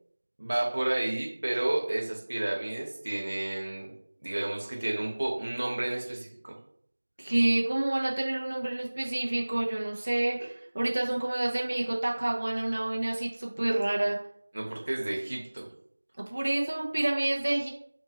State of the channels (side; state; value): both; inverted; correlation -1.00